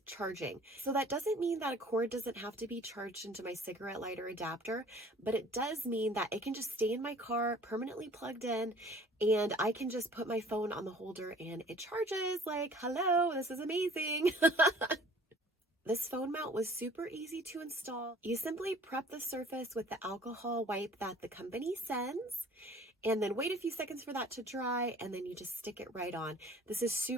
charging. So that doesn't mean that a cord doesn't have to be charged into my cigarette lighter adapter, but it does mean that it can just stay in my car permanently plugged in, and I can just put my phone on the holder and it charges. Like, hello, this is amazing. This phone mount was super easy to install. You simply prep the surface with the alcohol wipe that the company sends, and then wait a few seconds for that to dry, and then you just stick it right on. This is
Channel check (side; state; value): both; normal; correlation 0.51